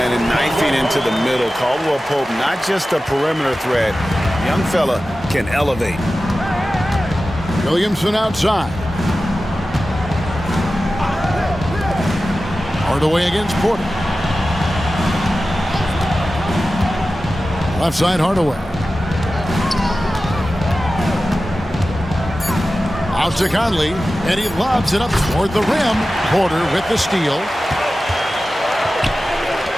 and 9 feet into the middle. Caldwell Pope, not just a perimeter threat. Young fella can elevate. Williamson outside. Hardaway against Porter. Left side, Hardaway. Out to Conley, and he lobs it up toward the rim. Porter with the steal.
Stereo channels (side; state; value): both; normal; correlation 0.94